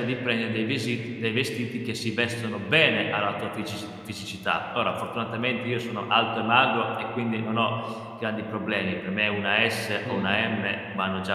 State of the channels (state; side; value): identical; both; correlation 1.00